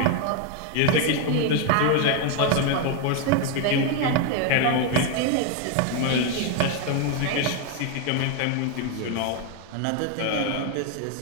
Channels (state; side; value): different; both; correlation 0.01